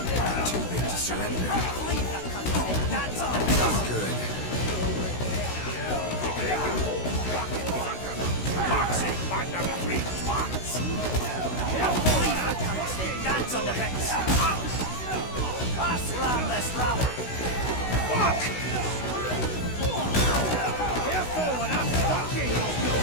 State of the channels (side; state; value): right; late; 16 ms